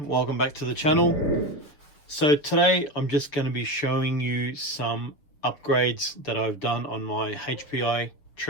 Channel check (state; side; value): late; right; 6.8 ms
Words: Welcome back to the channel. So today I'm just going to be showing you some upgrades that I've done on my HPI